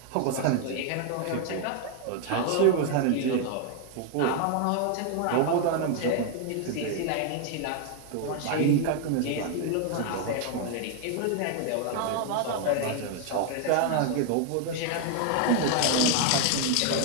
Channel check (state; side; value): different; both; correlation 0.00